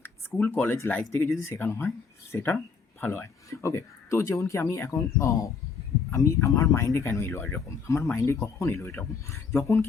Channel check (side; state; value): right; quieter; 5.4 dB